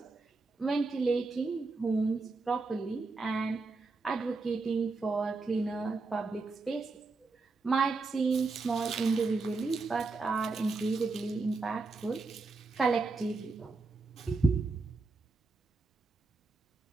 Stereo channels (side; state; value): left; quieter; 3.8 dB